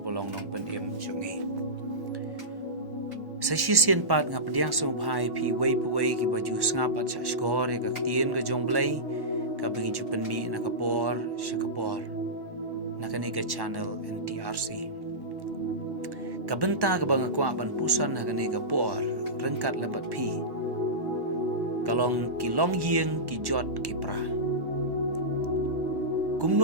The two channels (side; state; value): left; late; 1.1 ms